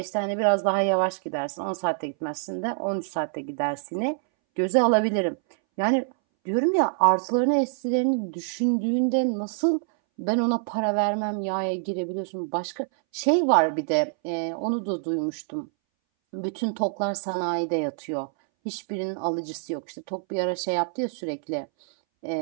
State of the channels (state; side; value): silent; left; 61 dB below the other